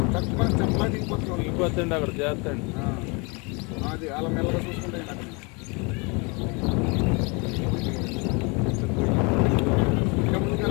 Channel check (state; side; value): quieter; right; 29.9 dB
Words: తక్కువ చెప్పలా దిగిపోతుంది అక్కడ చేస్తాండి. అది అలా మెల్లగా చూసుకుంటే